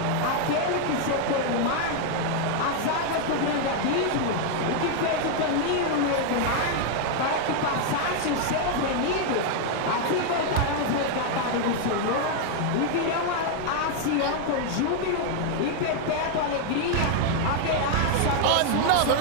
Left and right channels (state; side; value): different; both; correlation 0.00